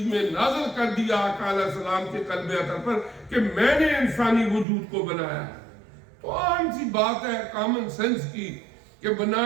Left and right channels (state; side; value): drops out; left; at 4.7 s